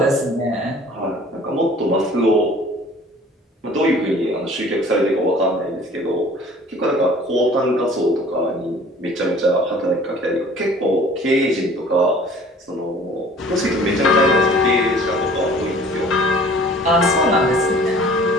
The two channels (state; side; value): normal; both; correlation 0.49